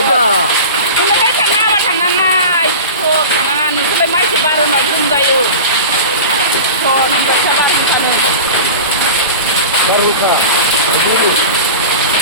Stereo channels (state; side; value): inverted; both; correlation -0.32